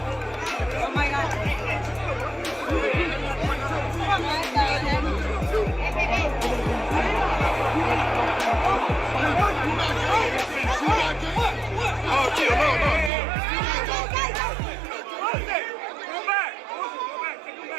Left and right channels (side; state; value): left; drops out; at 13.1 s